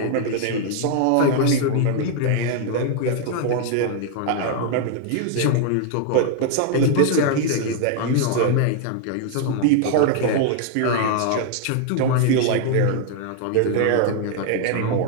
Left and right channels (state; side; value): different; both; correlation 0.00